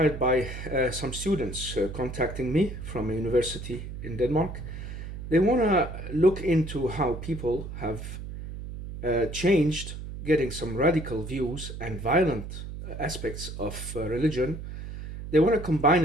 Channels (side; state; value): right; noise; hum, 9 dB below the sound